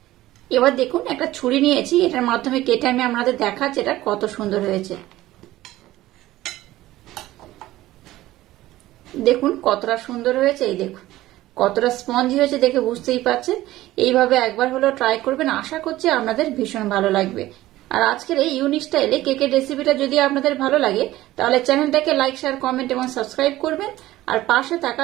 এবার দেখুন একটা ছুরি নিয়েছি, এটার মাধ্যমে কেটে আমি আপনাদের দেখাচ্ছি এটা কত সুন্দর হয়েছে। দেখুন কতটা সুন্দর হয়েছে, এই দেখুন কতটা স্পঞ্জি হয়েছে দেখে বুঝতেই পারছেন। এইভাবে একবার হলেও ট্রাই করবেন, আশা করছি আপনাদের ভীষণ ভালো লাগবে। আর আজকের এই ইউনিক স্টাইলে কেকের রেসিপিটা যদি আপনাদের ভালো লাগে তাহলে চ্যানেলটাকে লাইক, শেয়ার, কমেন্ট এবং সাবস্ক্রাইব করবেন আর পাশে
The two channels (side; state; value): left; quieter; 16.1 dB